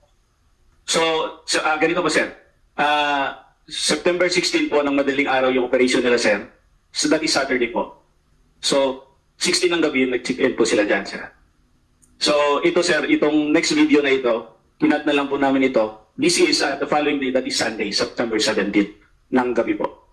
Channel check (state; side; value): identical; both; correlation 1.00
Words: So ganito po, sir. September 16 po ng madaling araw yung operation nila, sir. So, that is Saturday po. So, 16 ng gabi, nag-check-in po sila dyan, sir. So, ito sir, itong next video na ito, kinat na lang po namin ito. This is the following day, that is Sunday, September 17 ng gabi po.